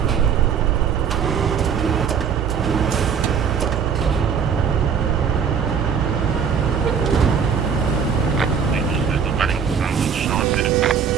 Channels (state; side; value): quieter; left; 6.9 dB